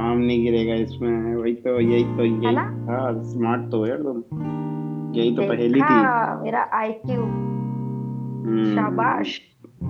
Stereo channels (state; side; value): identical; both; correlation 1.00